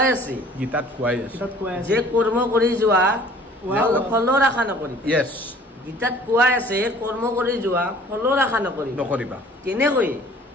আছে যে কৰ্ম কৰি যোৱা ফলৰ আশা নকৰিবা য়েছ গীতাত কোৱাই আছে কৰ্ম কৰি যোৱা ফলৰ আশা নকৰিবা কেনেকৈ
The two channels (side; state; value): both; normal; correlation 0.51